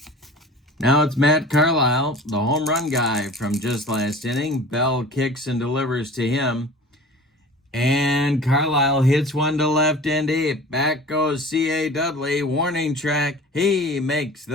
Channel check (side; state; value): both; normal; correlation 0.40